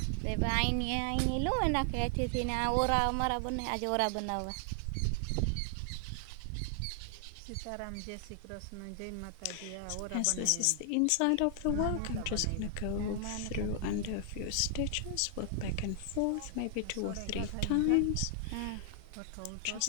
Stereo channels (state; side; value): different; both; correlation 0.00